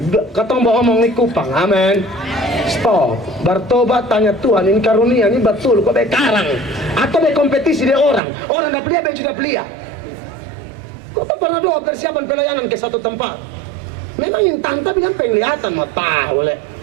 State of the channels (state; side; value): drops out; left; at 8.2 s